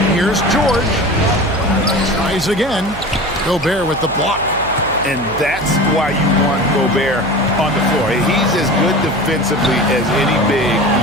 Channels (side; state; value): right; noise; hum, 13 dB below the sound